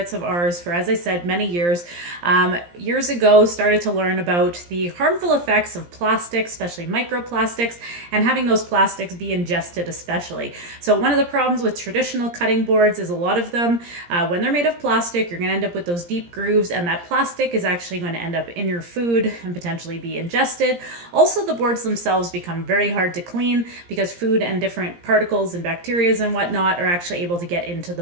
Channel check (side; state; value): left; late; 17 ms